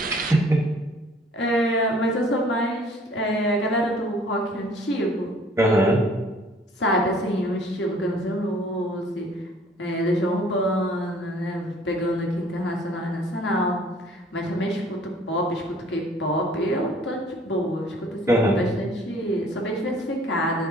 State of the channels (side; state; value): both; normal; correlation 0.55